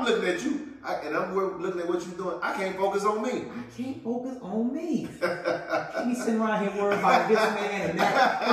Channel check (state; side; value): identical; both; correlation 1.00